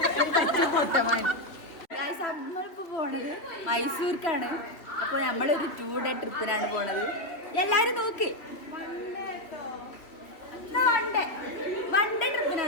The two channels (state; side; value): late; right; 2.9 ms